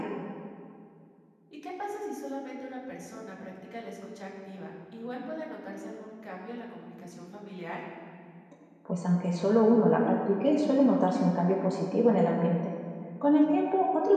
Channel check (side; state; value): both; identical; correlation 1.00